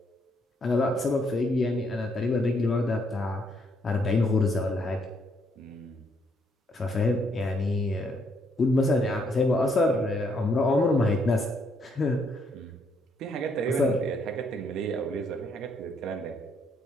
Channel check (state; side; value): normal; both; correlation 0.72